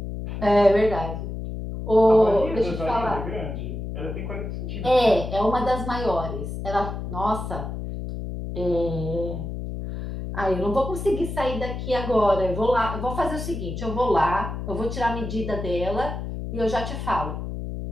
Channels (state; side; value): noise; left; hum, 6 dB below the sound